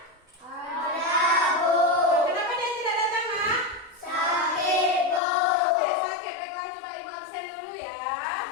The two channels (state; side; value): drops out; right; at 5.2 s